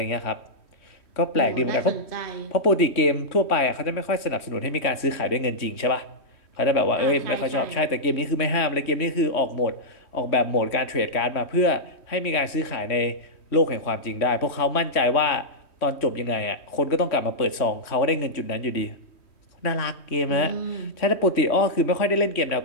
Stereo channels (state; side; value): late; right; 3.1 ms